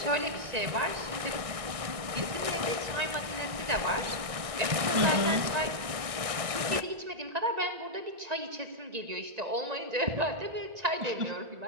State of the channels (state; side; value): late; left; 1.6 ms